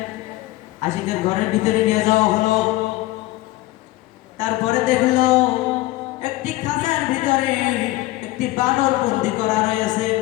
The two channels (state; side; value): quieter; right; 18.1 dB